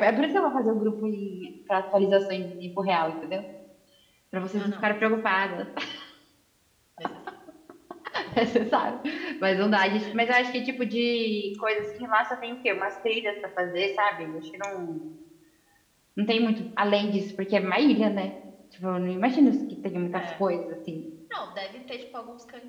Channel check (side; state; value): both; identical; correlation 1.00